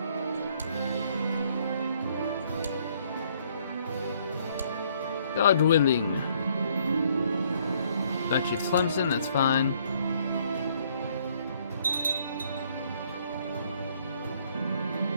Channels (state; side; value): inverted; both; correlation -0.65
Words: God willing. Got you Clemson, that's fine.